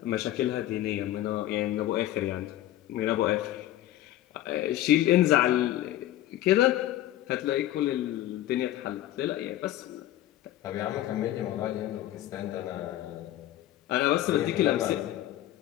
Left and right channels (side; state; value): right; quieter; 13.8 dB